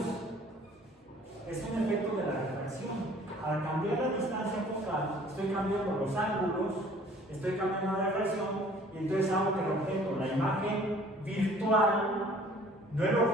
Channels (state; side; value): normal; both; correlation 0.53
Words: Es un efecto de la refracción. Al cambiar la distancia focal, estoy cambiando los ángulos, estoy cambiando la refracción, y entonces hago que el objeto, la imagen virtual, no el